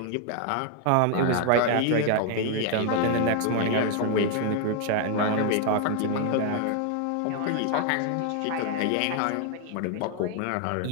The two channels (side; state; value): both; different; correlation 0.00